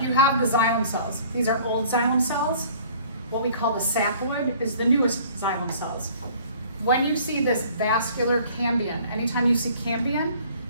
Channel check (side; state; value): both; inverted; correlation -0.53